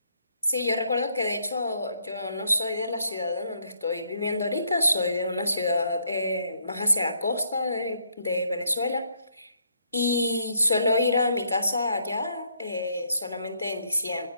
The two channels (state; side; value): inverted; both; correlation -0.72